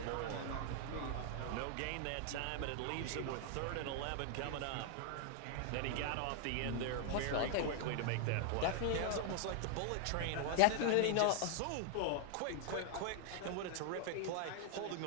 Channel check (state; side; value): different; both; correlation 0.00